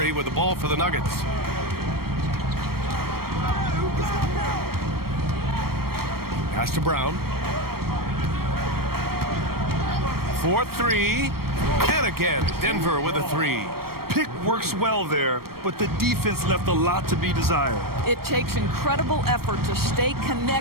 with the ball for the Nuggets. Pass to Brown. 4-3. And again, Denver with a 3. Pick works well there, but the defense left a lot to be desired. It takes incredible effort to stay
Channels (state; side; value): late; left; 0.94 ms